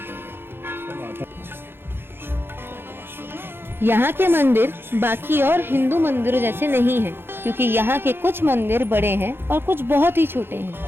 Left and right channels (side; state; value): left; late; 0.11 ms